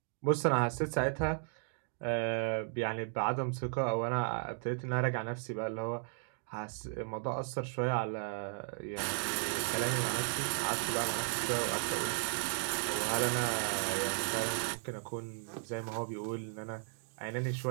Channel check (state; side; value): silent; left; 54 dB below the other